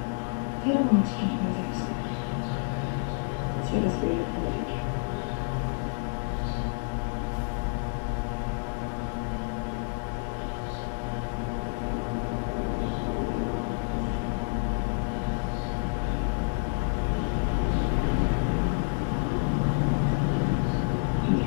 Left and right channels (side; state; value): right; silent; digital silence